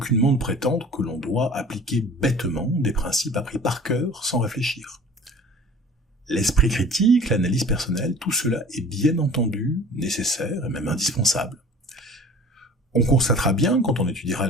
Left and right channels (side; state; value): both; normal; correlation 0.45